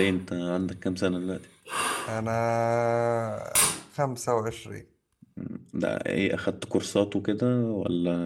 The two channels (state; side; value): identical; both; correlation 1.00